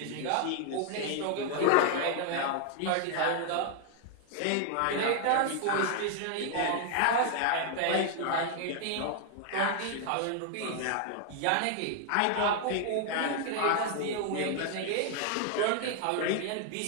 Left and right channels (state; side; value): different; both; correlation 0.00